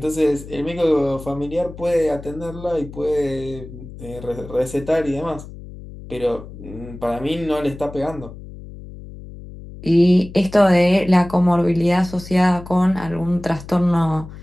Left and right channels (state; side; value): noise; left; hum, 15 dB below the sound